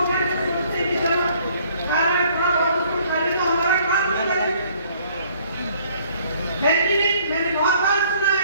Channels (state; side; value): inverted; both; correlation -0.61